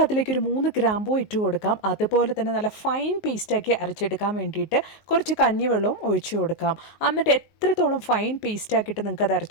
അതിലേക്ക് ഒരു 3 ഗ്രാമ്പൂ ഇട്ട് കൊടുക്കാം. അതുപോലെ തന്നെ നല്ല ഫൈൻ പേസ്റ്റാക്കി അരച്ചെടുക്കാൻ വേണ്ടിയിട്ട് കുറച്ച് കഞ്ഞിവെള്ളവും ഒഴിച്ചു കൊടുക്കാം. എന്നിട്ട് എത്രത്തോളം ഫൈൻ പേസ്റ്റാക്കിയിട്ട് നിങ്ങൾക്ക് അത്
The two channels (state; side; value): late; right; 19 ms